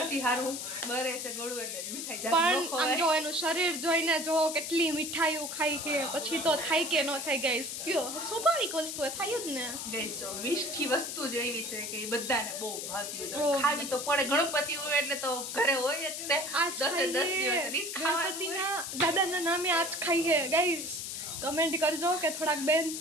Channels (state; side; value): noise; left; hiss, 5 dB below the sound